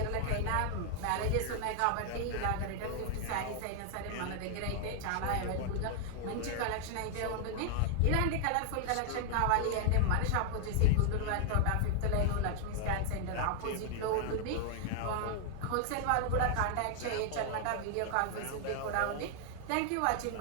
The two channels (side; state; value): both; different; correlation 0.00